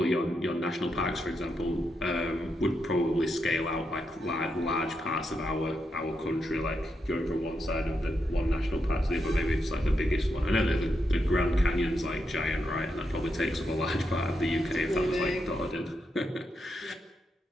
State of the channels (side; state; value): both; normal; correlation 0.83